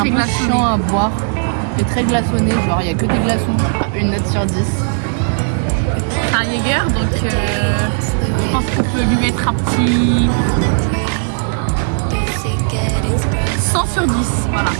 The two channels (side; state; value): left; silent; digital silence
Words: peu glaçonné. chiant à boire. Et très glaçonné, genre il n'y a que des glaçons. Une note sur 10. C'est un Jäger, donc je pense qu'on peut lui mettre un petit 100 sur 10. Voilà.